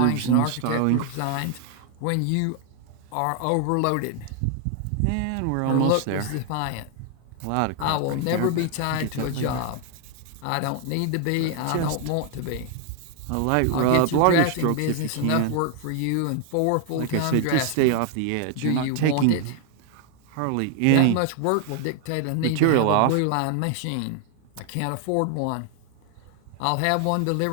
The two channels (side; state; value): both; different; correlation 0.00